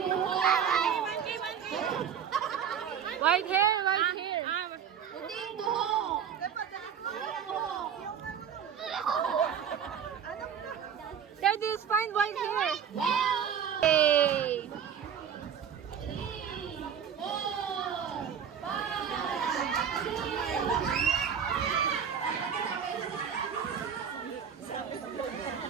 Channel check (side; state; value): left; quieter; 7.9 dB